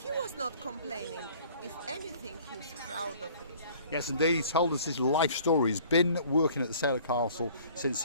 was not complaining. If anything, he's proud of it. Yes, indeed. He told us his life story. He's been working at the Sailor Castle since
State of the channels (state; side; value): inverted; both; correlation -0.52